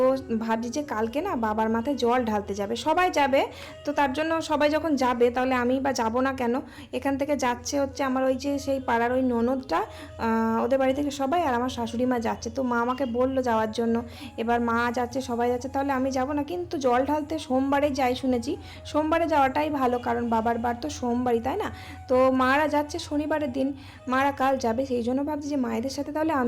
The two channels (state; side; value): identical; both; correlation 1.00